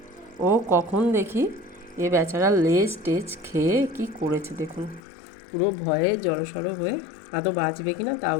ও কখন দেখি এ বেচারা লেজ টেজ খেয়ে কি করেছে দেখুন। পুরো ভয়ে জড়সড় হয়ে, আদৌ বাঁচবে কিনা তাও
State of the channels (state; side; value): drops out; right; at 5.0 s